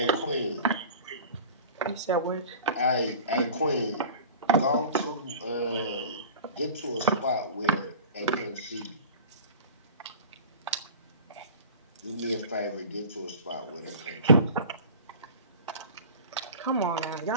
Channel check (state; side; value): inverted; both; correlation -0.38